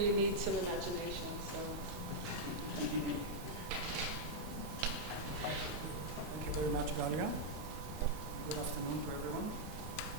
need some imagination. So. Thank you very much, Galia. Good afternoon to everyone.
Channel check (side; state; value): both; normal; correlation -0.04